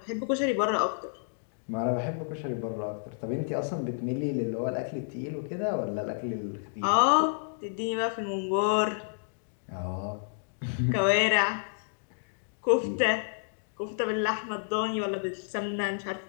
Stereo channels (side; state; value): right; silent; digital silence